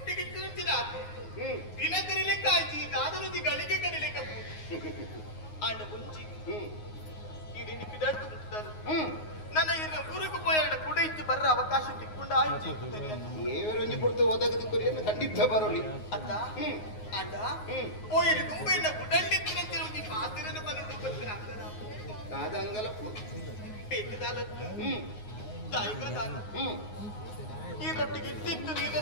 ತಿನ್ನುತ್ತಿನ ದಿನ ಕರಿಲೆಕ್ಕ ಆಯ್ತು ಈ ದಾದಲುದಿ ಗಳಿಗೆ ಕರಿಲೆಕ್ಕ ಆಂಡ ಮುಂಚಿ ಈ ನಿನ್ನ ಪಿದಾಡ್ತು ಮುಟ್ಟಾರು ನನ್ನ ಇನ್ನು ಊರಿಗೆ ಪೋಯಾಡ ಕೂಡ ಇತ್ತು ಬರ್ರ ಅವಕಾಶ ತಿಕ್ಕೊಂಡ ಆಯ್ತು ಏವರೊಂಜಿ ಕೊಡ್ತು ಒದಗದು ಕೊರಿಯನ್ನು ಖಂಡಿತ ಬರೋಲಿ ಅತ್ತ ಆಂಡ ಪೋಯರಿ ತುಂಬ ಇನ್ನ ಗುಡಂಡಿತ್ತಿನಂತಿನ ಒಂದು ಮಾತಿನ ಬರೋಡು ಬರ್ತೀನಿ ಅಂಗನ ಕಾದಂಗಲ ಬೇಕದಾಲತ್ತು ತಾಯಿಗದಾನ ಈ ರೊಟ್ಟಿಗೆ ಇಟ್ಟಿತ್ತು ನೀರ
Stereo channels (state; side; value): late; right; 9.6 ms